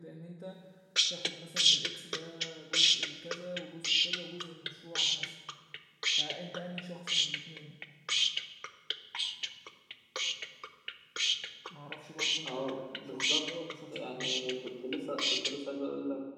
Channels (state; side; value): identical; both; correlation 1.00